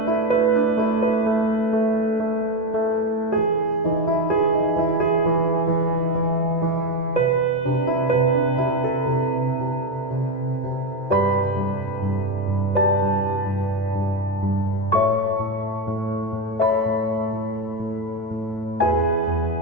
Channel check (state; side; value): normal; both; correlation 0.13